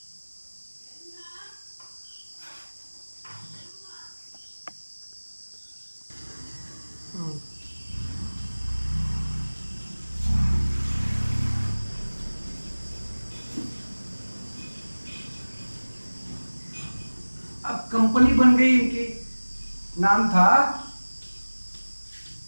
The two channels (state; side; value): inverted; both; correlation -1.00